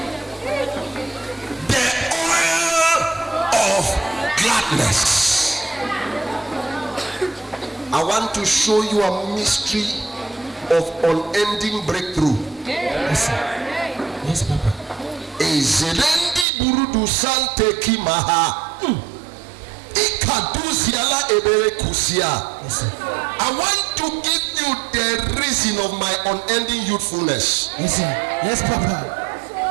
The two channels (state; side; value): drops out; left; at 16.4 s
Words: The oil of gladness. I want to show you a mystery of unending breakthrough. Yes, sir. Yes, Papa. Ezerendi burudu sante kimaha. Ikaduziala ebere kusia. Yes, sir. I want to give you the reason of my unending youthfulness. Yes, sir. Yes, Papa.